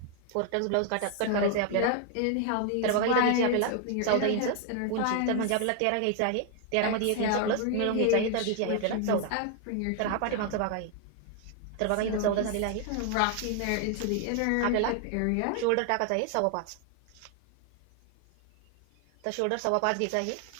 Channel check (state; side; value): different; both; correlation 0.00